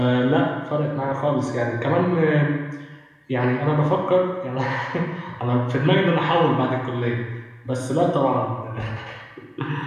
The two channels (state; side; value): identical; both; correlation 1.00